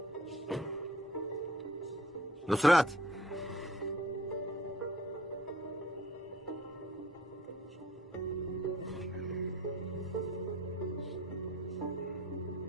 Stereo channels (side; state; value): both; normal; correlation 0.53